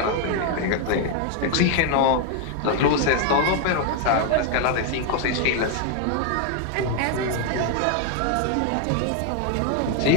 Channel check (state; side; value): different; both; correlation 0.01